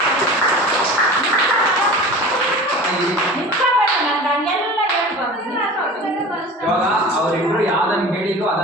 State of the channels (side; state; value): both; normal; correlation 0.37